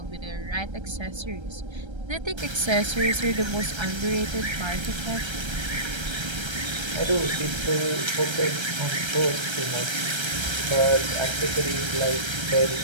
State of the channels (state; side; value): late; left; 1.3 ms